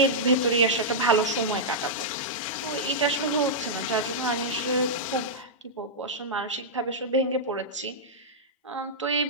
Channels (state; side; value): normal; both; correlation -0.09